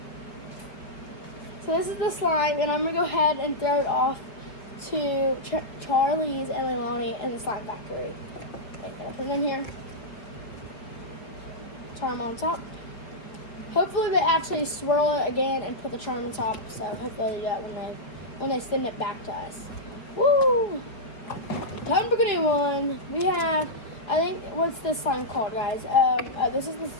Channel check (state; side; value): late; right; 5.0 ms